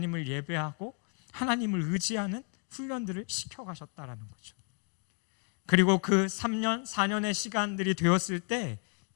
예배하고 하나님을 의지하는 훈련들을 시켜가셨다라는 거죠. 그리고 그 3년, 4년의 시간들이 되었을 때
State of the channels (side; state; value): right; quieter; 36.8 dB